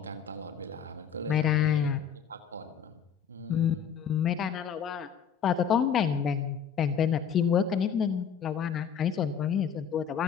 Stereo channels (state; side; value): quieter; right; 7.6 dB